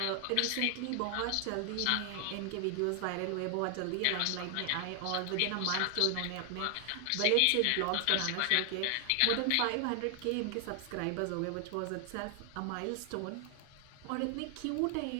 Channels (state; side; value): different; both; correlation 0.00